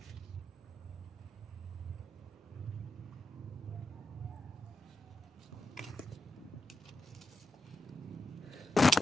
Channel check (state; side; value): normal; both; correlation 0.87